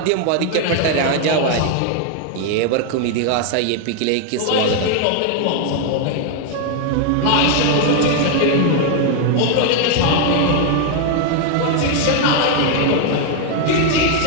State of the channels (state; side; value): different; both; correlation 0.00